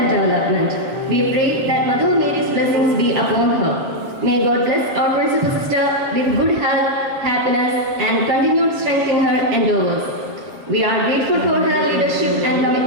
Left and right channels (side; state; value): left; late; 7.3 ms